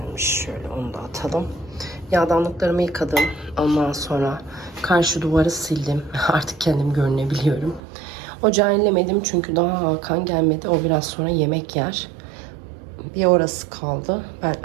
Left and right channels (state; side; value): drops out; left; at 7.8 s